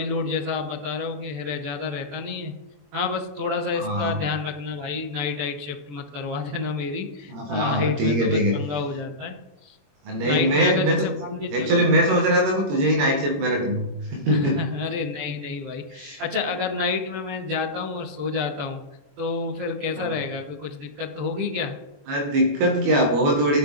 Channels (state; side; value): late; left; 21 ms